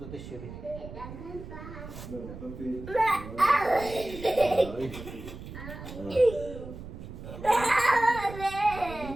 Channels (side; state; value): right; noise; rumble, 12 dB below the sound